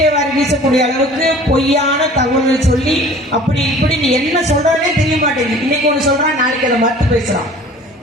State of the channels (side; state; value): both; normal; correlation 0.46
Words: வாரி வீசக்கூடிய அளவுக்கு பொய்யான தகவல்களை சொல்லி அப்படி இப்படி நீ என்ன சொல்றனே தெரிய மாட்டேங்குது. இன்னைக்கு ஒண்ணு சொல்றான், நாளைக்கு அதை மறுத்து பேசுறான்.